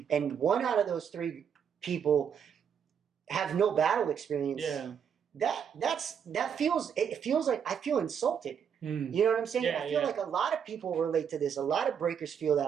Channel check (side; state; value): left; quieter; 7.7 dB